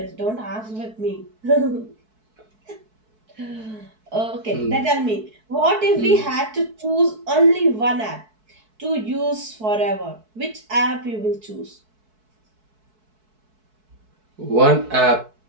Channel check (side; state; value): left; late; 4.6 ms